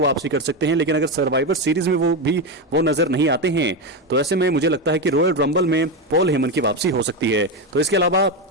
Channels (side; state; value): both; normal; correlation 0.12